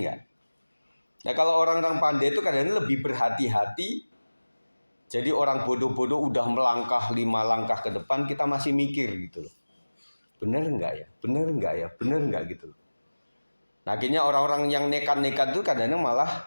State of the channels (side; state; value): both; inverted; correlation -1.00